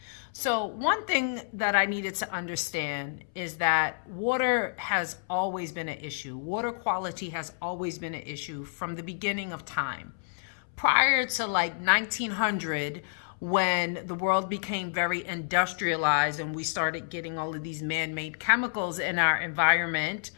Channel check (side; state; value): right; silent; 58 dB below the other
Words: So one thing that I needed to understand is that water has always been an issue. Water quality has always been an issue from the beginning of time. Prior to like 1900, when the world became very industrialized and we started getting all of these man-made chemicals in our environment,